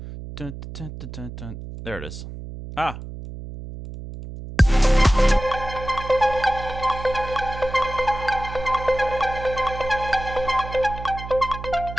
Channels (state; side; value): noise; right; hum, 11 dB below the sound